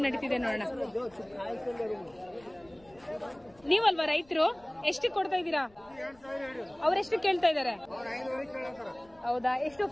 ನಡೀತಿದೆ ನೋಡೋಣ. ನೀವಲ್ವಾ ರೈತರು? ಎಷ್ಟು ಕೊಡ್ತಾ ಇದ್ದೀರಾ? ಅವ್ರೆಷ್ಟು ಕೇಳ್ತಾ ಇದ್ದಾರೆ? ಹೌದಾ? ಎಷ್ಟು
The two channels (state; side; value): noise; left; rumble, 29 dB below the sound